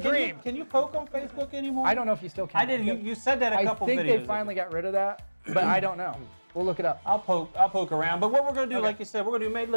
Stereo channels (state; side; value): inverted; both; correlation -1.00